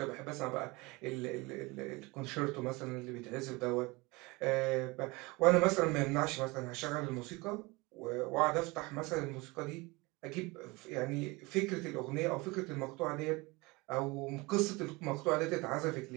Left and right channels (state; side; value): quieter; left; 24.3 dB